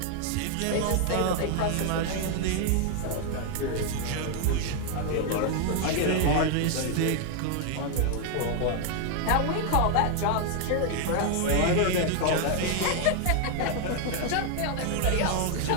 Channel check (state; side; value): different; both; correlation 0.00